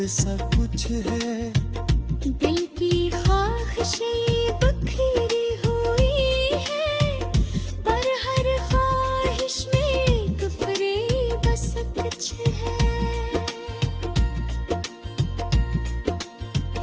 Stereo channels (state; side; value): identical; both; correlation 1.00